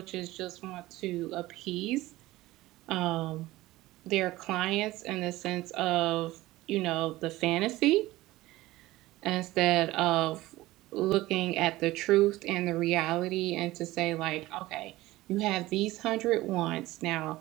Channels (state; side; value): quieter; left; 17.9 dB